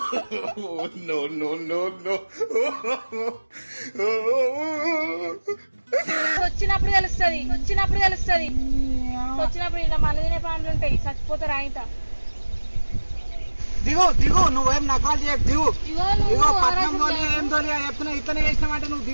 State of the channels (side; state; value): both; inverted; correlation -1.00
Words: వచ్చినప్పుడు తెలుస్తుంది. వచ్చినప్పుడు ఇలా మన తినే ప్రాణులు ఉంటాయి, చచ్చిపోతారు ఆయన. దిగు నువ్వేం నకాలు చేయకు. దిగు పట్నం తోలి ఏం తోలి చెప్తున్నా. ఇట్లనే చేసినామంటే నువ్వు